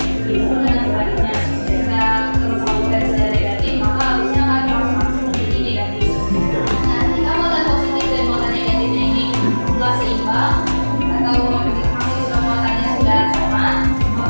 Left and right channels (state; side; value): inverted; both; correlation -1.00